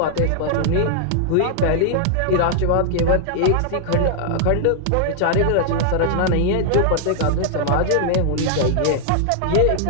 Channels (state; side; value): different; both; correlation -0.01